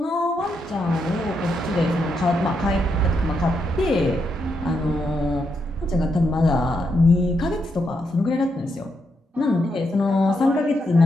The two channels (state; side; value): normal; both; correlation 0.81